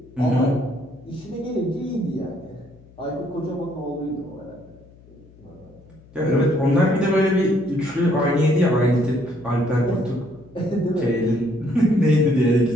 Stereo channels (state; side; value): noise; left; hum, 25 dB below the sound